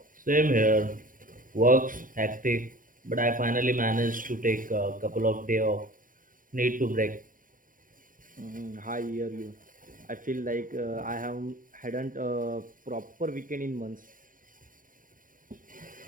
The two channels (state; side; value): late; left; 0.39 ms